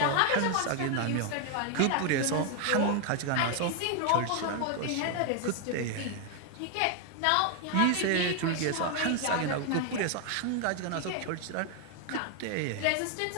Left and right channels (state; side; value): different; both; correlation 0.00